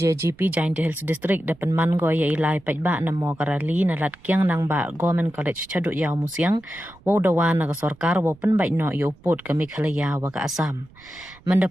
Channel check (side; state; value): right; noise; rumble, 26 dB below the sound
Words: Giant Hills District dapat man go ya ilai pajba na mo karali na lat kyang nang ba Government College chaduk yaw musyang wo dawa na sorkar wo pen bai no yo put ke Meghalaya wa ka Assam.